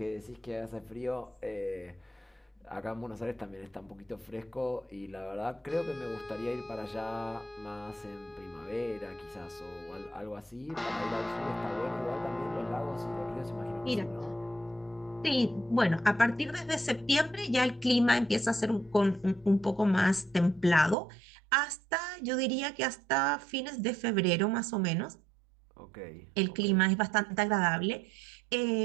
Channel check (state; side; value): drops out; left; at 21.0 s